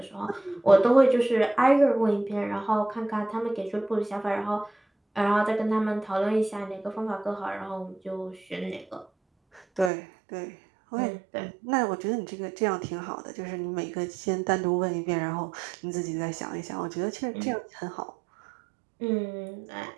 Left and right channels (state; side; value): drops out; left; at 9.9 s